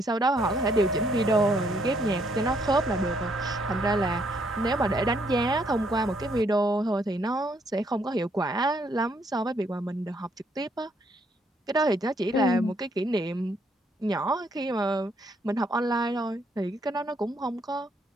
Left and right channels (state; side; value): normal; both; correlation 0.70